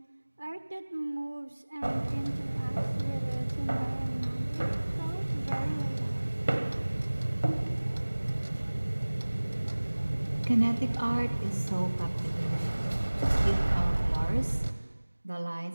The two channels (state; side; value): inverted; both; correlation -1.00